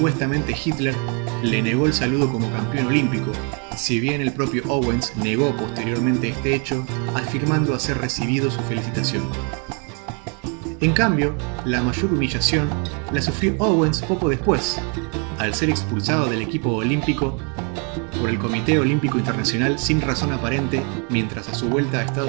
Hitler le negó el saludo como campeón olímpico, si bien el propio Owens negó posteriormente este hecho, afirmando haber recibido su felicitación. En cambio, la mayor humillación la sufrió Owens poco después, al ser expulsado del equipo olímpico por el Comité Olímpico Internacional sin razón aparente, mientras a su vuelta a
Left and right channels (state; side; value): quieter; left; 36.9 dB